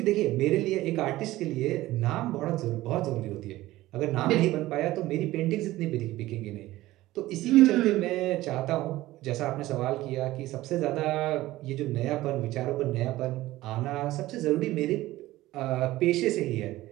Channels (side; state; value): left; quieter; 16.8 dB